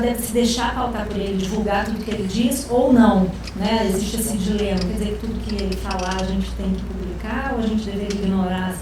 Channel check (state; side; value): identical; both; correlation 1.00